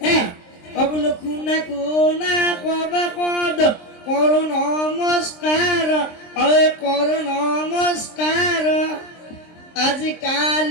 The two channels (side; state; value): right; late; 23 ms